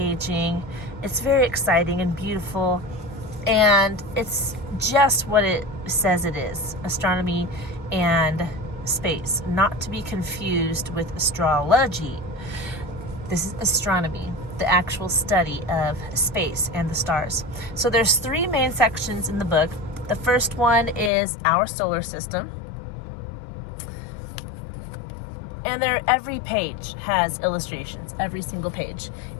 It's very exciting and beautiful. And it's just what it says it is, astronomy and space, not to be confused with astrology. This is astronomy, the actual study of space and the stars. So there's three main sections in the book. The first one is our solar system. And every page has illustrations, every single page.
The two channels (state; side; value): drops out; right; at 21.1 s